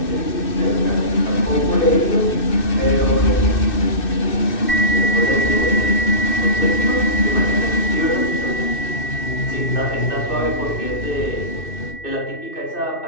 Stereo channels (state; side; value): late; right; 2.6 ms